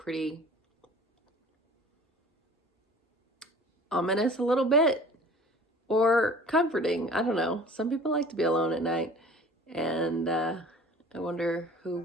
ominous a little bit, or comforting. I don't know. Some people like to be alone at night. And I wonder who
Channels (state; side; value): normal; both; correlation 0.45